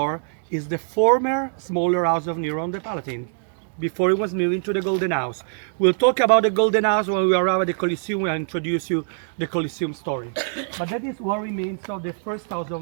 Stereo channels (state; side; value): silent; left; digital silence